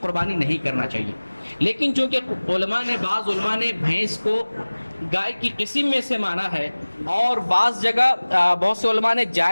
قربانی نہیں کرنا چاہیے۔ لیکن چونکہ بعض علماء نے بھینس کو گائے کی قسم میں سے مانا ہے، اور بعض جگہ بہت سے علماء نے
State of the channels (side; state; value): both; inverted; correlation -1.00